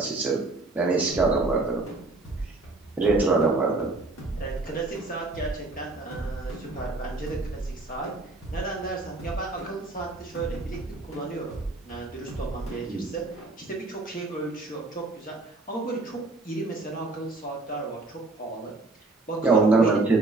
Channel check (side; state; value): left; quieter; 3.2 dB